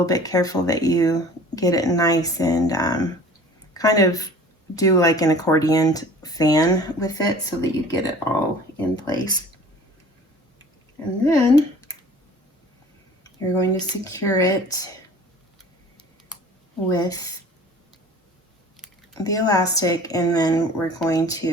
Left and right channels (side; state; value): both; normal; correlation 0.46